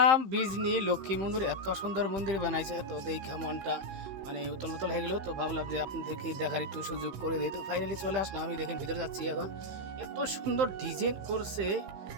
বিজনি লক্ষ্মী মন্দির। এত সুন্দর মন্দির বানাইছে, তো দেখে মনটা মানে উতল উতল হয়ে গেল। তো ভাবলাম যে আপনাদেরকে দেখার একটু সুযোগ করে দিই। তো ফাইনালি চলে আসলাম, আমি দেখেন ভিতরে যাচ্ছি এখন। এত সুন্দর ডিজাইন করছে,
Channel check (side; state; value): left; late; 15 ms